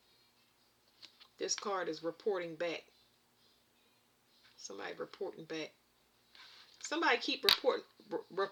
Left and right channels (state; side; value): identical; both; correlation 1.00